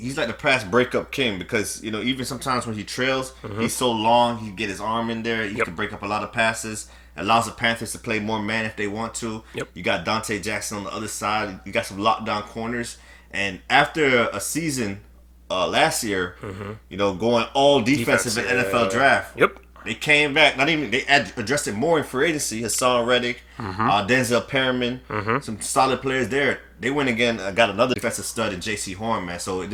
like the pass breakup king because, even sometimes when he trails, he's so long, he can get his arm in there. He can break up a lot of passes. Allows the Panthers to play more man if they want to. Yep. You got Deonte Jackson on the other side. You got some lockdown corners. And after a season last year, going all defensive in NFL draft, they came back. They addressed it more in free agency. Hassan Reddick, Denzel Perriman, some solid players there. They went again, got another defensive stud in Jaycee Horn, man. So it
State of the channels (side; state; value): both; identical; correlation 1.00